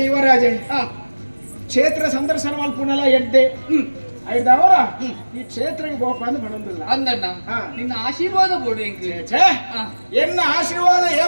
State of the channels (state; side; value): inverted; both; correlation -1.00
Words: ಯುವರಾಜೆ ಹಾ ಕ್ಷೇತ್ರ ಸಂದರ್ಶನ ಮಲ್ಪುನಲ ಎಡ್ಡೆ ಐದವರ ಈ ಕ್ಷೇತ್ರಕ್ಕೆ ಬೋಪ ಅಂದ್ ಬಣಂದಿಲ್ಲ ಅಂದಣ್ಣ ಹಾ. ನಿನ್ನ ಆಶೀರ್ವಾದ ಬೋಡು ಎಂಕ್ಲೆ ಛೇ ಎನ್ನ ಆಶೀರ್ವಾದ